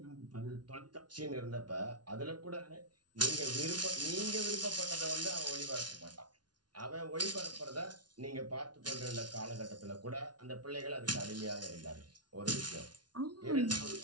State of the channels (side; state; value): left; late; 0.70 ms